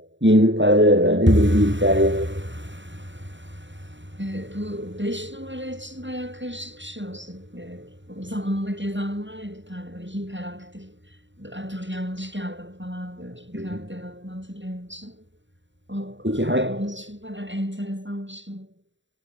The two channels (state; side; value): late; left; 0.54 ms